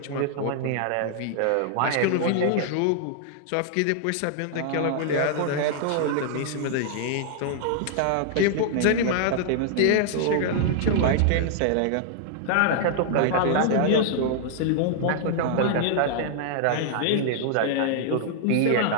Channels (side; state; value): both; different; correlation -0.01